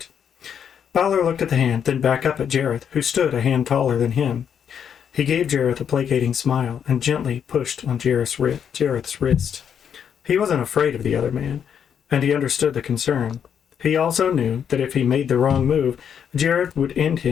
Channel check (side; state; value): right; quieter; 8.1 dB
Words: Balor looked at the hand, then back up at Jareth, who stood a hand taller than him. He gave Jareth a placating smile and gently pushed on Jareth's wrist. He wasn't afraid of the other man, and he understood the concern. He also knew that if he made the wrong move, Jareth would end